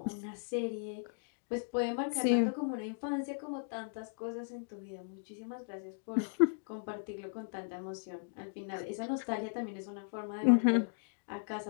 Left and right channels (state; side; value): silent; right; digital silence